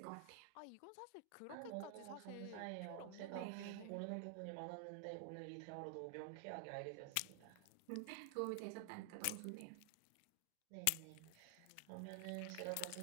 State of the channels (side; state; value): both; different; correlation 0.00